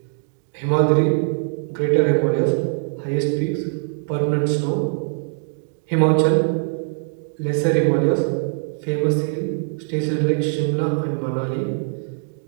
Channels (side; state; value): left; silent; digital silence